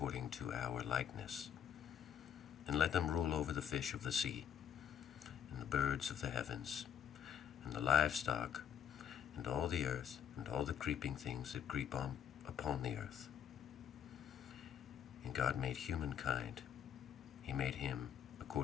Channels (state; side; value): quieter; right; 8.8 dB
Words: to our likeness, and let them rule over the fish of the sea, and the birds of the heavens, and the livestock, and all the earth, and all the creeping things that creep upon the earth. And God made humankind. He made him